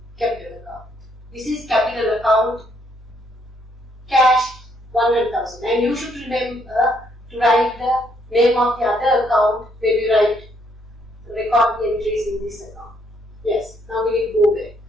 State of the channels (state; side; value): normal; both; correlation 0.71